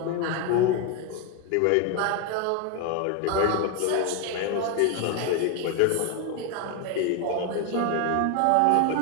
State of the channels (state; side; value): different; both; correlation 0.01